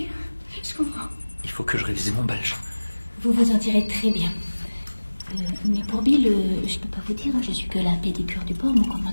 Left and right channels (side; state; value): both; inverted; correlation -1.00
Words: je comprends. Il faut que je révise mon belge. Vous vous en tirez très bien. Mais pour Bill, je peux pas vous dire, je suis que la pédicure du port, mon